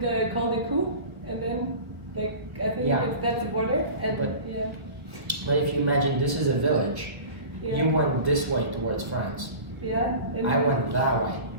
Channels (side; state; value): left; late; 1.4 ms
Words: the Col du Cou, and then, like, I think that's the border. And But- yeah. But if you imagine this is a village, Yeah. you went this way towards France. Yeah. I went that way.